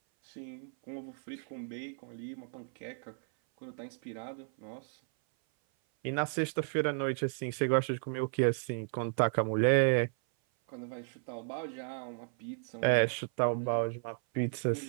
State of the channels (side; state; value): left; silent; 55 dB below the other